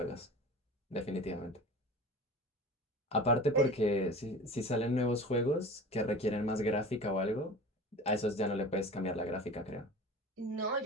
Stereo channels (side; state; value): both; normal; correlation 0.37